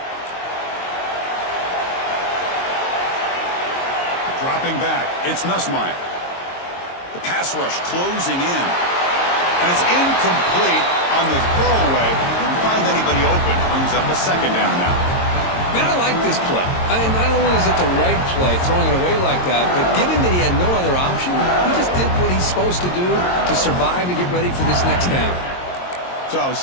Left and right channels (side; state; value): right; late; 22 ms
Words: Dropping back, it's Nussmeier. The pass rush closing in. And it's incomplete on the throwaway. Didn't find anybody open. Brings up a second down now. Man, I like this play. I mean, not only is it the right play, throwing it away like that, but given that he had no other option, he just did what he's supposed to do to survive and get ready for this next down. So,